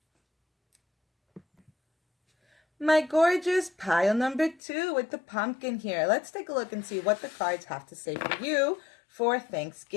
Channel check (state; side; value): drops out; right; at 4.6 s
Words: My gorgeous pile number 2 with the pumpkin here. Let's take a look and see what the cards have to say for you for